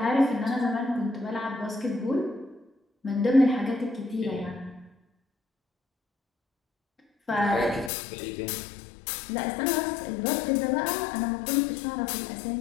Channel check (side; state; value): right; drops out; at 7.9 s